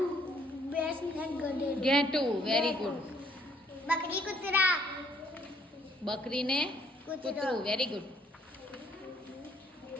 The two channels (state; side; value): normal; both; correlation 0.65